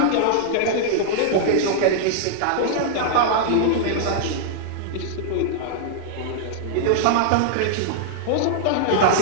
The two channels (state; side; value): different; both; correlation -0.01